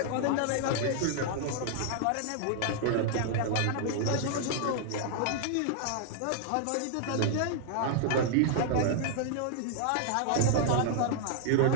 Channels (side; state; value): both; different; correlation -0.01